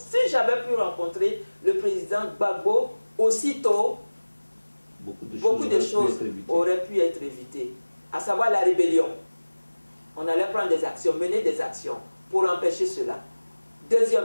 j'avais pu rencontrer le président Gbagbo aussitôt, beaucoup de choses auraient pu être évitées. À savoir la rébellion. On allait prendre des actions, mener des actions pour empêcher cela.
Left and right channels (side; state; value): both; inverted; correlation -1.00